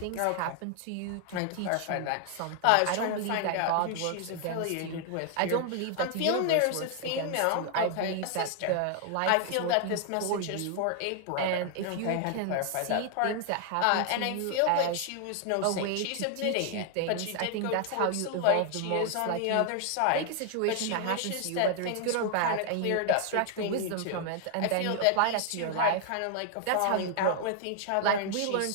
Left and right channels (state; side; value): different; both; correlation 0.00